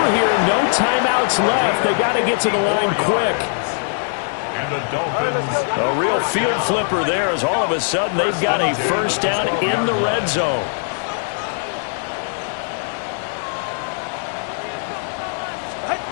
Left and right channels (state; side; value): silent; right; 62 dB below the other